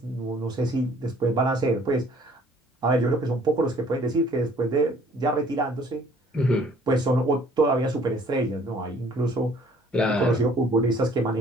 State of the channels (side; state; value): both; normal; correlation 0.57